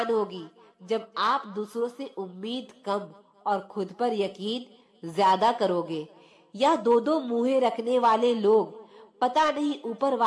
होगी जब आप दूसरों से उम्मीद कम और खुद पर यकीन ज्यादा करोगे। या दो मुंहें रखने वाले लोग पता नहीं ऊपर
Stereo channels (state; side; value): identical; both; correlation 1.00